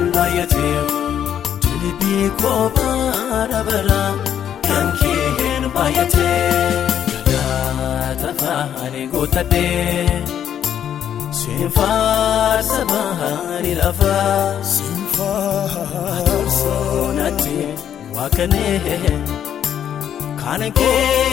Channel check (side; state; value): right; quieter; 9.5 dB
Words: bayate Tilibi kobara bara kankehen bayate Tafa ani gutadhe sinfaarsa bahari lafa sinfaarsoonatti waaqanee kana